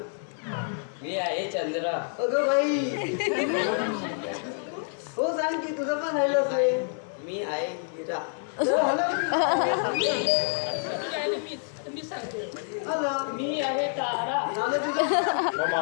मी आहे चंद्र अगं बाई हो सांग की तुझं पण राहिलं असेल मी आहे हिरा मी सांगते हॅलो मी आहे तारा झालं तुझं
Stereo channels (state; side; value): silent; right; 60 dB below the other